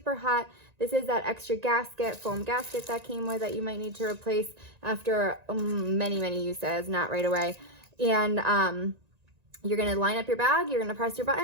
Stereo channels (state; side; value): late; left; 1.9 ms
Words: hot. This is that extra gasket, foam gasket that came with that you might need to replace after many, many uses, not right away. And you're gonna line up your bag, you're gonna press your